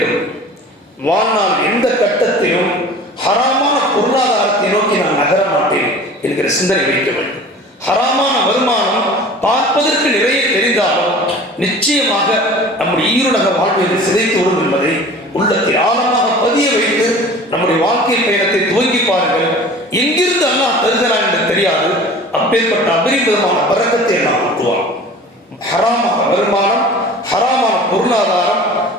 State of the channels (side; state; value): both; normal; correlation 0.42